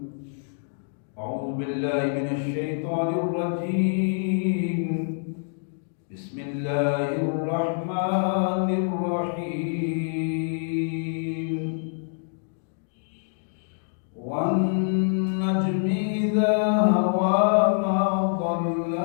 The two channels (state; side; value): silent; right; digital silence